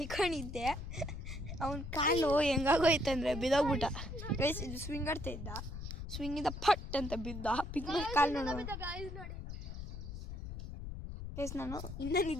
ಅವನ ಕಾಲು ಹೆಂಗಾಗೋಯ್ತಂದರೆ ಬಿದ್ದೋಗ್ಬಿಟ್ಟ. ಗೈಸ್ ಇದು ಸ್ವಿಂಗ್ ಆಡ್ತಾ ಇದ್ದ, ಸ್ವಿಂಗಿಂದ ಪಟ್ ಅಂತ ಬಿದ್ದ ಕಾಲು ನೋಡಿ. ಗೈಸ್ ನಾನು ಇನ್ನೂ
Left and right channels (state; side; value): noise; left; rumble, 8 dB below the sound